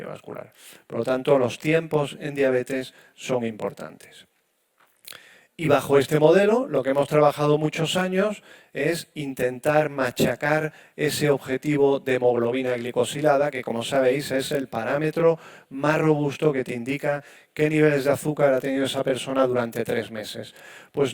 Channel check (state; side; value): identical; both; correlation 1.00